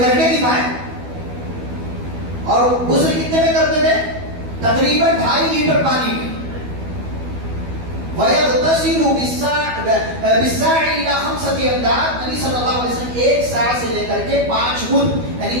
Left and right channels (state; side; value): late; left; 12 ms